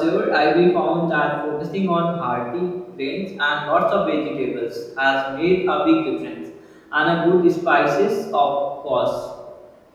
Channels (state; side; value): identical; both; correlation 1.00